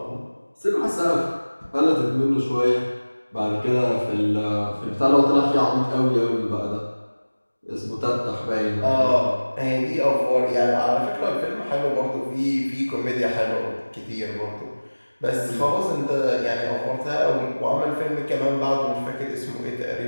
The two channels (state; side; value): inverted; both; correlation -1.00